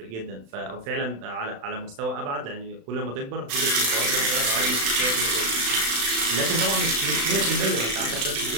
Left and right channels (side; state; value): left; late; 36 ms